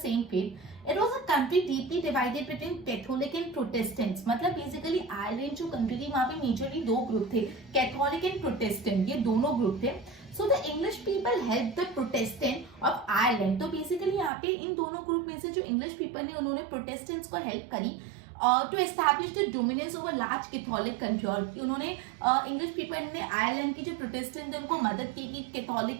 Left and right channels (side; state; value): left; drops out; at 14.3 s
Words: fate. It was a country deeply divided between Catholic and Protestants. मतलब बेसिकली आयरलैंड जो कंट्री थी वहां पे मेजरली 2 ग्रुप थे, कैथोलिक एंड प्रोटेस्टेंट, ये दोनों ग्रुप थे। So the English people help the Protestant of Ireland. तो बेसिकली यहाँ पे इन दोनों ग्रुप में से जो इंग्लिश पीपल ने, उन्होंने प्रोटेस्टेंट्स को हेल्प करी to establish the dominance over large Catholic country. और उन्होंने इंग्लिश पीपल ने आयरलैंड की जो प्रोटेस्टेंट थे उनको मदद की कि